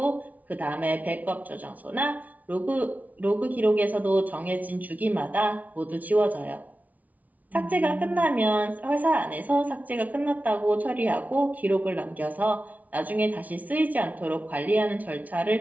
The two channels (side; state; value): left; late; 0.073 ms